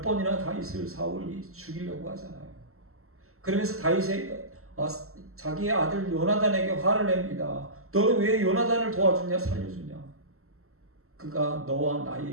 번이나 다윗을 사울이 죽이려고 하잖아요. 그러면서 다윗이 자기의 아들 요나단에게 화를 냅니다. 너는 왜 요나단을 도와주냐, 살려주냐? 그가 너와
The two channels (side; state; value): left; late; 0.63 ms